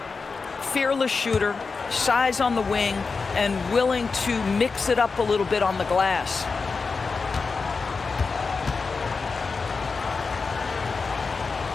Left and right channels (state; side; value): quieter; right; 4.6 dB